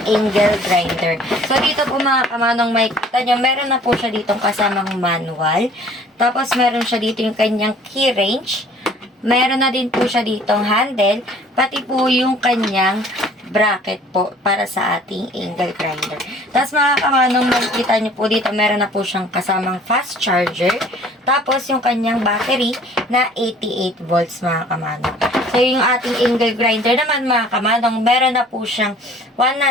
angle grinder. So dito po mga kamanong, makikita nyo, meron na po siya ditong kasamang manual. Tapos meron siya dito yung kanyang key range. Meron na din po siya ditong handle, pati po yung kanyang bracket po para sa ating angle grinder. Tapos mga kamanong, makikita nyo po dito, meron na po siyang kasamang fast charger. Tapos yung kanyang battery na 88 volts mga kamanong. So yung ating angle grinder naman mga kamanong, meron na po siyang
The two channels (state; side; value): normal; both; correlation 0.53